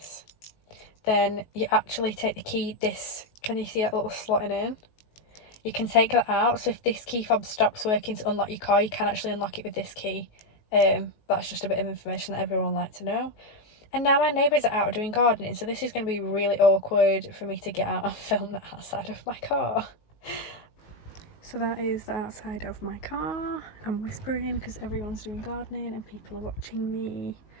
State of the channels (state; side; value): late; right; 19 ms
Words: then you actually take the key, this, can you see that little slotting in? You can take that out, so if this key fob stops working to unlock your car, you can actually unlock it with this key. That's just a bit of information that everyone would like to know. And now my neighbours are out doing gardening, so this is going to be really awkward for me to get out and film the outside of my car. So that is the outside of my car. I'm whispering because everyone's doing gardening and people are watching me.